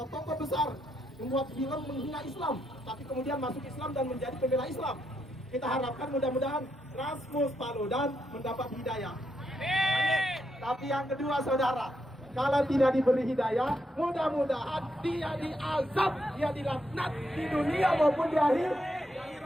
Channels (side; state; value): both; normal; correlation 0.80